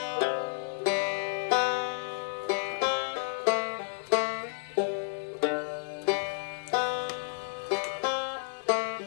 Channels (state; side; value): silent; right; digital silence